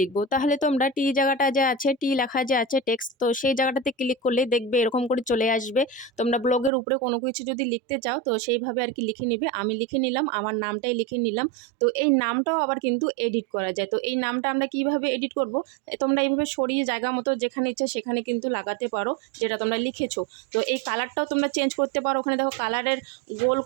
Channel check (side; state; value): left; drops out; at 6.7 s